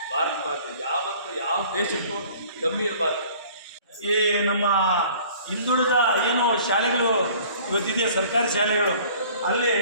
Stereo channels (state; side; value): inverted; both; correlation -0.50